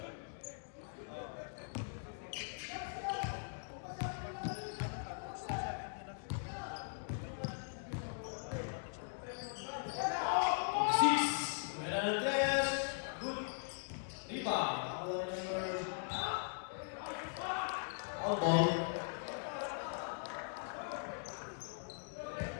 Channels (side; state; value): right; silent; digital silence